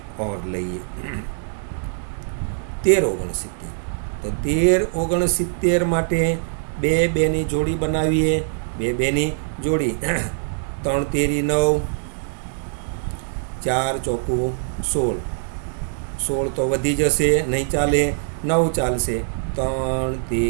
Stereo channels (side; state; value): left; silent; digital silence